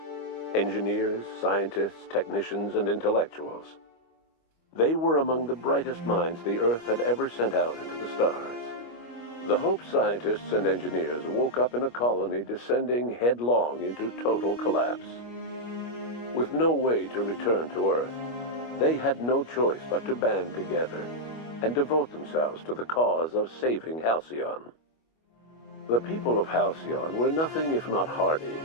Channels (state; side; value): late; right; 25 ms